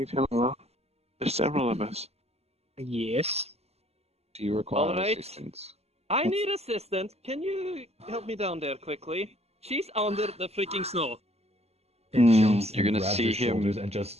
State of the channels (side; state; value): left; late; 0.30 ms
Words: him alone? There's several of us. Yes. Do you require Alright. assistance? I need assistance. Can you help me down there quickly? She's under the freaking snow. You're gonna grabs see your him shoulders and